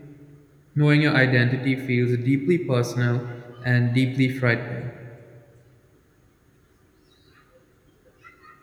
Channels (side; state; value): both; identical; correlation 1.00